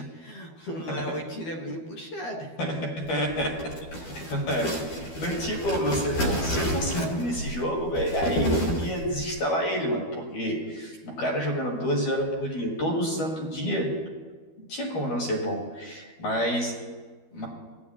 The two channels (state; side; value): late; right; 12 ms